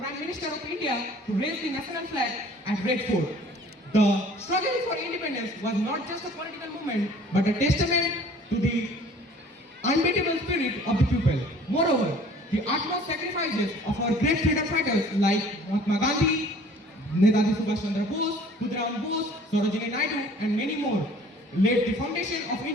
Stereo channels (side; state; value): both; normal; correlation 0.51